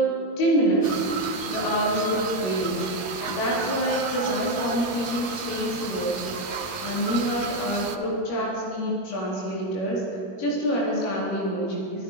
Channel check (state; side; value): late; right; 21 ms